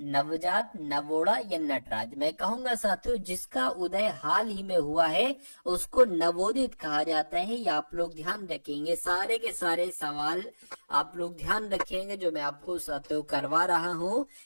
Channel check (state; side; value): inverted; both; correlation -1.00